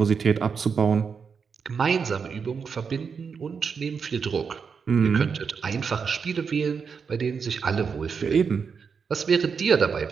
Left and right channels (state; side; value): quieter; left; 6.0 dB